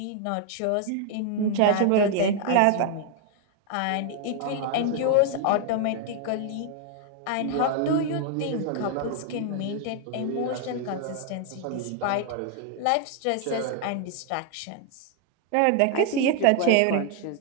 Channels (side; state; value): both; different; correlation 0.00